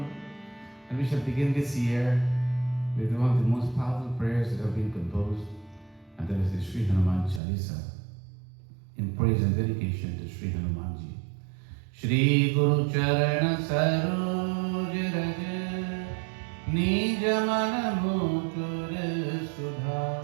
And we shall begin this year with one of the most powerful prayers that have been composed, and that is the Sri Hanuman Chalisa. in praise and dedication to Shri Hanumanji. Shri Guru Charana Saroj Raj Nij Mana Mukur Sudha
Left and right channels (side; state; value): left; drops out; at 7.4 s